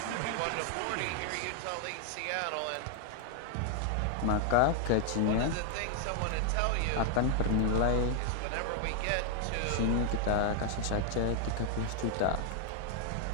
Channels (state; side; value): different; both; correlation 0.00